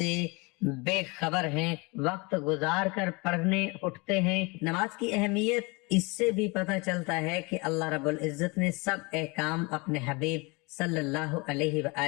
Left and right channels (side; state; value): right; quieter; 27.5 dB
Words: بے خبر ہیں، وقت گزار کر پڑھنے اٹھتے ہیں۔ نماز کی اہمیت اس سے بھی پتہ چلتا ہے کہ اللہ رب العزت نے سب احکام اپنے حبیب صلی اللہ علیہ